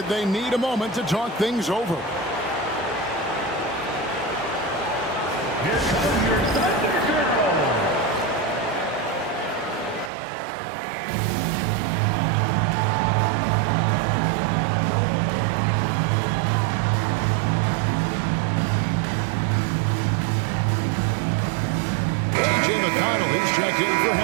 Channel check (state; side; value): drops out; left; at 10.1 s